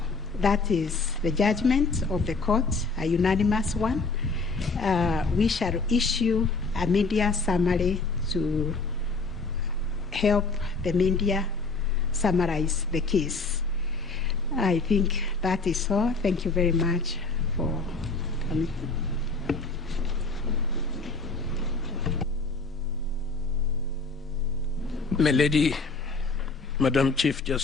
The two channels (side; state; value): right; quieter; 3.8 dB